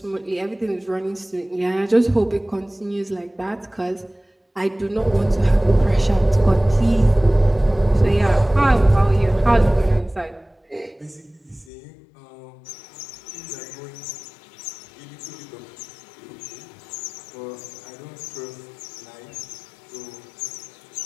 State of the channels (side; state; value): right; drops out; at 11.7 s